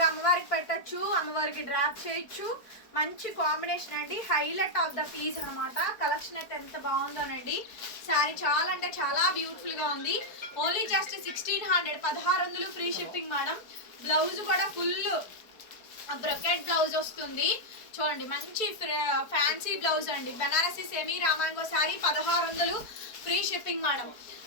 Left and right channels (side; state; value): right; late; 4.5 ms